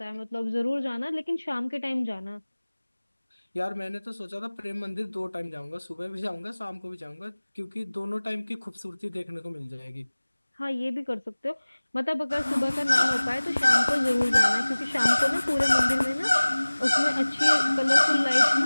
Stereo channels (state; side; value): inverted; both; correlation -1.00